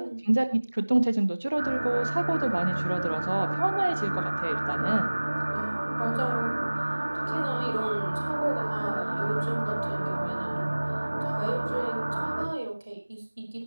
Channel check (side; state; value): both; inverted; correlation -1.00